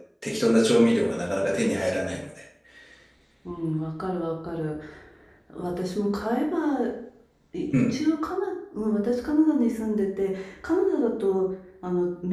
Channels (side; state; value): both; identical; correlation 1.00